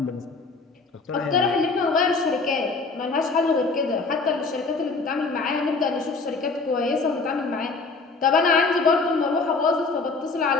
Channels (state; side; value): quieter; right; 4.0 dB